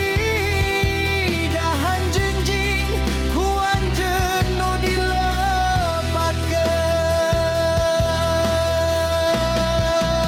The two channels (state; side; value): identical; both; correlation 1.00